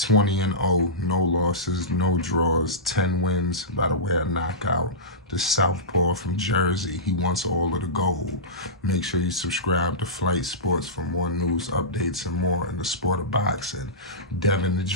no losses, no draws, 10 wins by the way of knockout. The Southpaw from Jersey, he wants all of the gold. Make sure you subscribe to Flight Sports for more news, updates, and more in the sport of boxing. Devin the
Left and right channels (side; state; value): both; normal; correlation -0.18